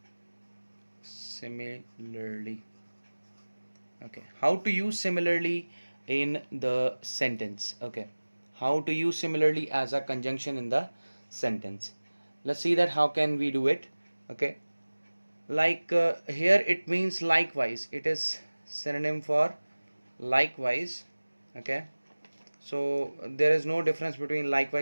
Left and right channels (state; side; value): inverted; both; correlation -1.00